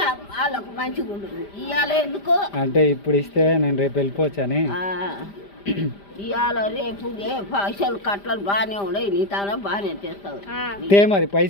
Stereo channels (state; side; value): late; right; 5.0 ms